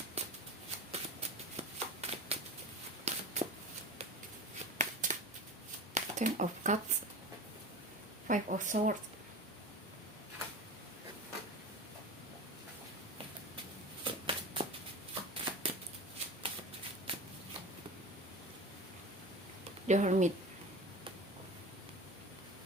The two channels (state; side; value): normal; both; correlation 0.31